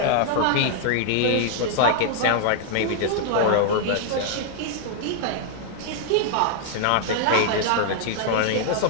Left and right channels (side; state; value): both; different; correlation 0.00